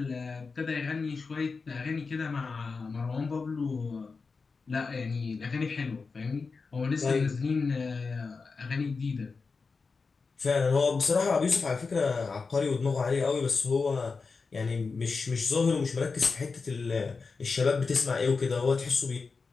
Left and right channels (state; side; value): quieter; right; 4.6 dB